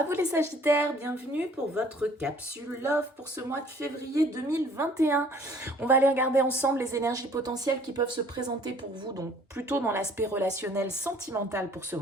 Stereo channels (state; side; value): normal; both; correlation 0.55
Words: vous les Sagittaires, bienvenue pour votre capsule Love pour ce mois de février 2021. On va aller regarder ensemble les énergies potentielles qui peuvent se présenter pour vous, donc plutôt dans l'aspect relationnel sentimental pour ce